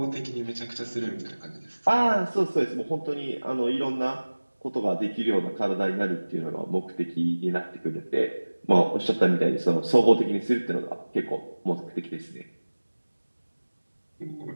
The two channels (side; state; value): both; inverted; correlation -1.00